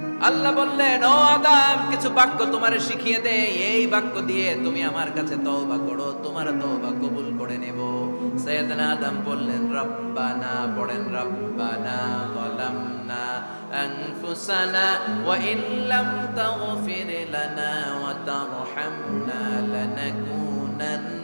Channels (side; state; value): both; inverted; correlation -1.00